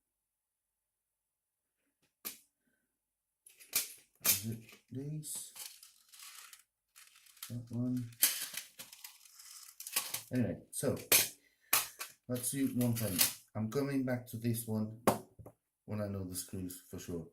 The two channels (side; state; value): both; identical; correlation 1.00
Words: Is it these? That one. Anyway, so let's do one thing. I'm coming back to this one when I know the screws for sure.